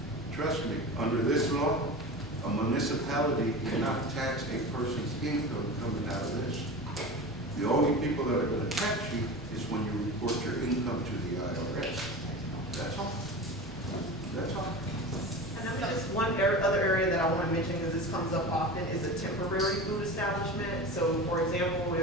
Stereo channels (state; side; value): normal; both; correlation 0.31